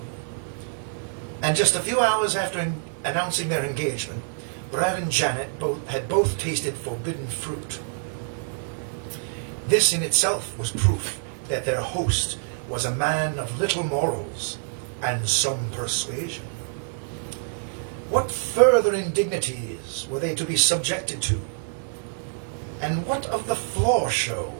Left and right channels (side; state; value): left; silent; digital silence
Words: And just a few hours after announcing their engagement, Brad and Janet had both tasted forbidden fruit. This in itself was proof that their host was a man of little morals and some persuasion. What further indignities were they to be subjected to? And what of the floor show